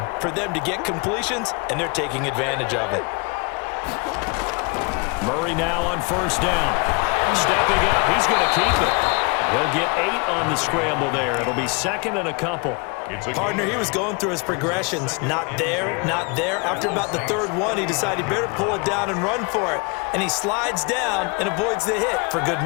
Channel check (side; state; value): right; quieter; 31.4 dB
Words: for them to get completions, and they're taking advantage of it. Murray now on first down. Stepping up, he's going to keep it. He'll get 8 on the scramble there. It'll be second and a couple. Partner, he was going through his progressions. Not there, not there. After about the third one, he decided he better pull it down and run for it. And he slides down and avoids the hit for good